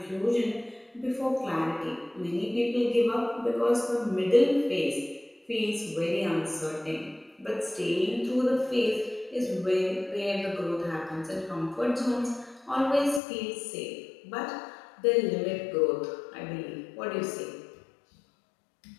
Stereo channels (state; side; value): drops out; right; at 13.2 s